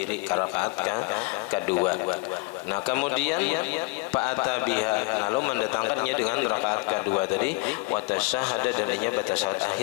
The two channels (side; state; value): right; quieter; 27.9 dB